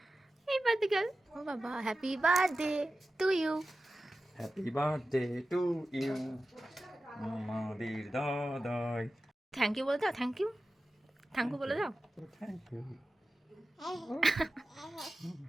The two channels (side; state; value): both; normal; correlation 0.94